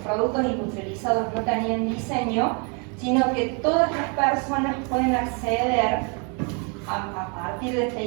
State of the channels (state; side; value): quieter; left; 35.8 dB